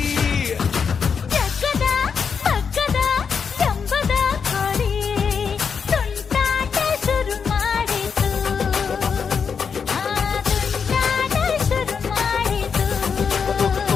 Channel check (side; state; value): right; quieter; 6.3 dB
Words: ಜಗ್ಗದ ಮಗ್ಗದ ಜಂಬದ ಕೋಳಿ ತುಂಟಾಟ ಶುರು ಮಾಡಿತು ತುಂಟಾಟ ಶುರು ಮಾಡಿತು